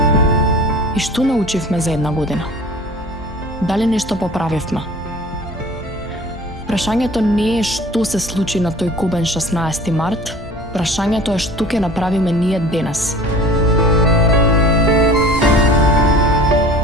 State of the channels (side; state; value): both; normal; correlation 0.44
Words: И што научивме за една година? Дали нешто поправивме? Прашањето не е што се случи на тој кобен 16 март, прашањето е што ќе направиме ние денес.